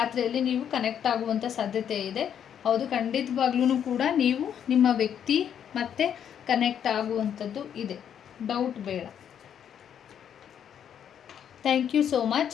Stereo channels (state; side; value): quieter; right; 8.9 dB